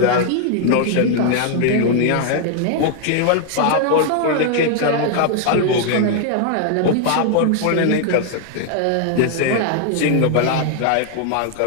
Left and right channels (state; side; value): different; both; correlation 0.00